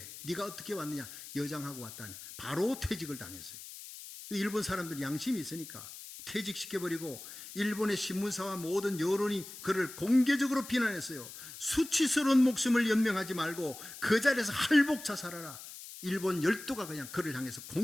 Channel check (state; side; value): noise; left; hiss, 13 dB below the sound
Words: 네가 어떻게 왔느냐? 여장하고 왔다니 바로 퇴직을 당했어요. 일본 사람들이 양심이 있으니까 퇴직시켜버리고 일본의 신문사와 모든 여론이 그를 공개적으로 비난했어요. 수치스러운 목숨을 연명하지 말고 그 자리에서 할복 자살하라. 일본 열도가 그냥 그를 향해서